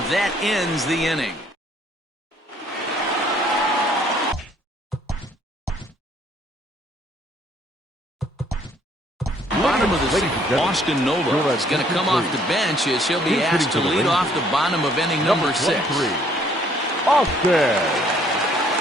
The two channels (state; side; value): normal; both; correlation 0.63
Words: that ends the inning. Bottom of the 6th, Austin Nola is going to come off the bench as he'll be asked to lead off the bottom of inning number 6. Austin